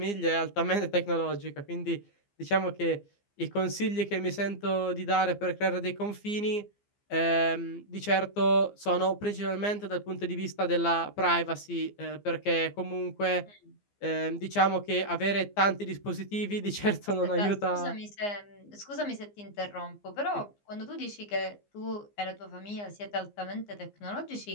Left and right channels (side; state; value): right; late; 15 ms